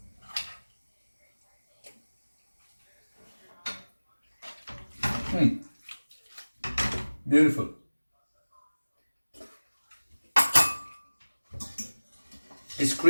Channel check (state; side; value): inverted; both; correlation -1.00